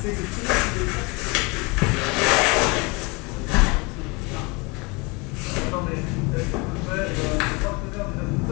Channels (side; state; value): right; quieter; 27.8 dB